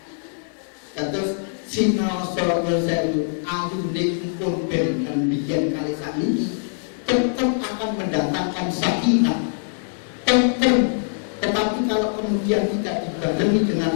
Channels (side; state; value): right; silent; digital silence